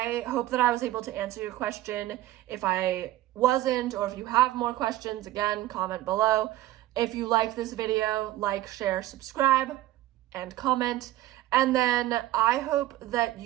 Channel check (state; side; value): quieter; left; 15.3 dB